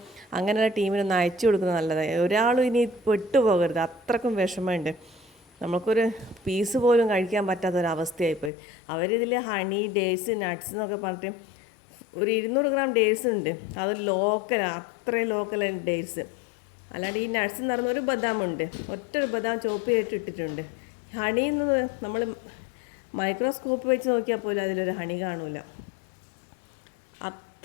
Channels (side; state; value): right; drops out; at 8.5 s